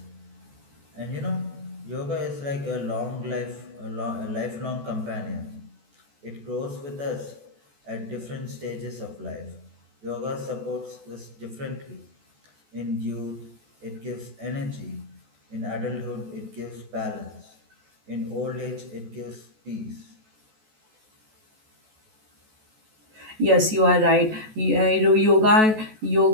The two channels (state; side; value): late; left; 14 ms